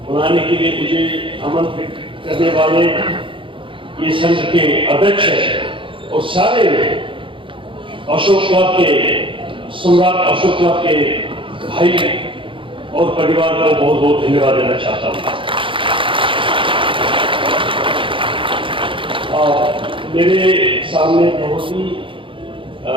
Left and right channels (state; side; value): late; left; 0.25 ms